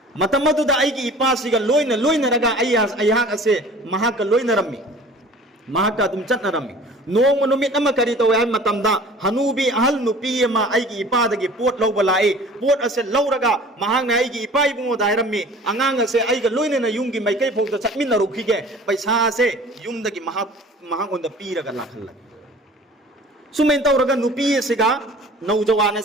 मतमदुदा आइगी इपा सिगा लोइना लोइना रगा अयहा असे महाक लोइना रम्मी महाका तुम चटना रम्मी नोंग नुमित अमा करी तो है मतमदा हनुबी अहल नुपी मा आइगी इपा दगी पोट लौबा लाए पोट असे लौरगा महांग ना आइगी इपा इबुंगो दायरम्मी अंगांग असे आइगा लोइना ना युंगी मैकै फोंग चटमिन रुखिगे पैसा से युम दगी महांग ओंदा पीरगा लाखल सुमेन तौरगा नुपी सिगा नौजवान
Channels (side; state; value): both; normal; correlation 0.45